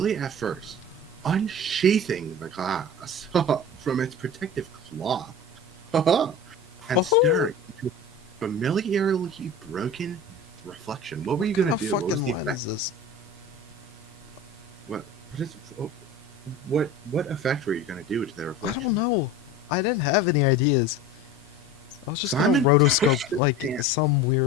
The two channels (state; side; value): normal; both; correlation 0.35